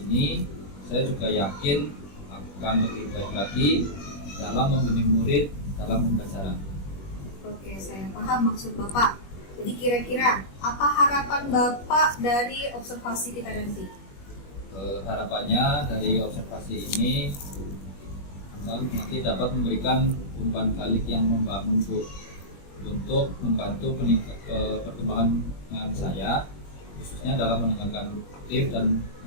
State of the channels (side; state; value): right; late; 21 ms